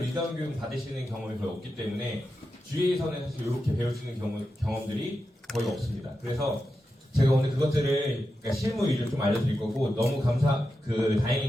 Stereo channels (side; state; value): both; normal; correlation 0.89